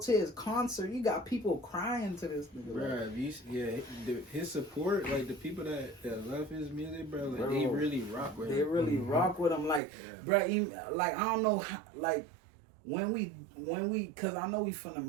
his concert, you got people crying to this nigga. Like, Bruh, his support, like the people that love his music, bro, like Bro, they really rock with they him. really rock with him. Like, Yeah. bruh, like I don't know, like when we, cause I know we finna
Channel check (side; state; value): left; drops out; at 9.8 s